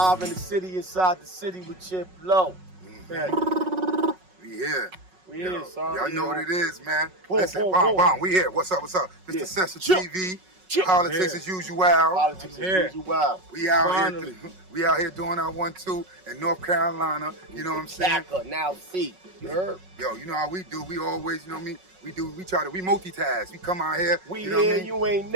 in the city, inside the city with Chip Lo. We here. We here, son. Y'all know what it is, man. Boom, Listen, boom, bomb, boom. bomb. We here. What's up? What's up? Mr. Session TV. Politics as usual. Politics as usual. We out here. We out here doing our 1-2 in North Carolina. You know what I'm saying? Now see. You heard? Yo, you know how we do. We always, you know what I mean? We multitask. We come out here. We you know here, what I mean? you ain't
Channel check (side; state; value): left; late; 5.4 ms